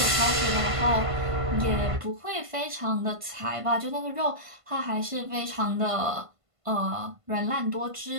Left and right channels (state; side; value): late; left; 1.5 ms